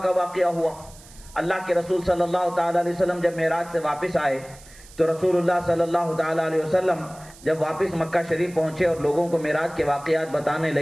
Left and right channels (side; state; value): right; noise; hiss, 22 dB below the sound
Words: کا واقعہ ہوا، اللہ کے رسول صلی اللہ تعالی علیہ وسلم جب معراج سے واپس آئے تو رسول اللہ صلی اللہ تعالی علیہ وسلم جب واپس مکہ شریف پہنچے اور لوگوں کو معراج کے واقعات بتانے